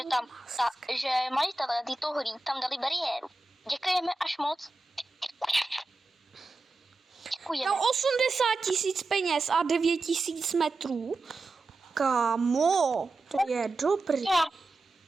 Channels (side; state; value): left; quieter; 3.2 dB